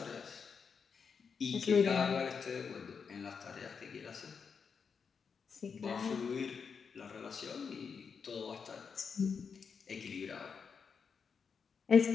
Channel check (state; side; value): quieter; right; 6.0 dB